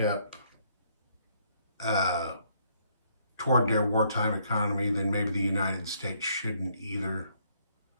toward their wartime economy, then maybe the United States shouldn't either.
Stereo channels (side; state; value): both; inverted; correlation -0.68